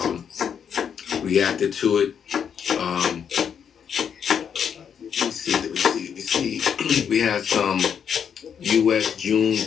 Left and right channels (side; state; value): right; quieter; 7.7 dB